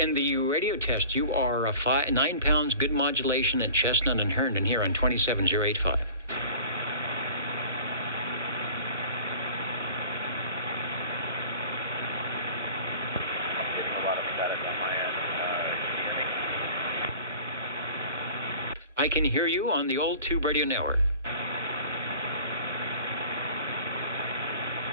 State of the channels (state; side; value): inverted; both; correlation -0.43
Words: the radio test, you are 9 pounds, good modulation at Chestnut and Herndon here on 27085. I can hear you on the old Tube Radio Network.